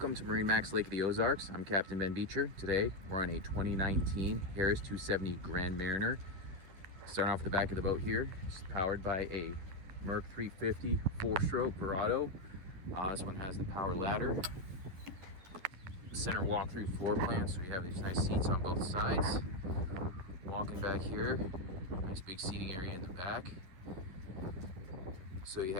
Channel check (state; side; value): late; left; 11 ms